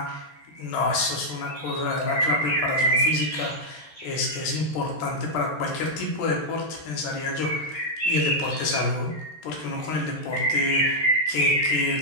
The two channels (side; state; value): right; late; 13 ms